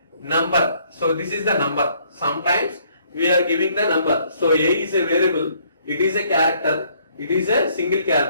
number. So this is the number. Sometimes we are giving the number. So A is a variable. It is a character. It is a single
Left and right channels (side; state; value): both; inverted; correlation -0.65